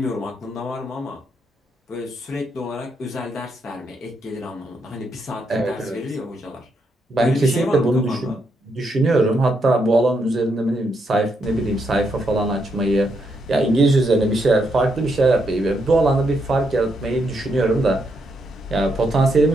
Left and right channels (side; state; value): both; normal; correlation 0.79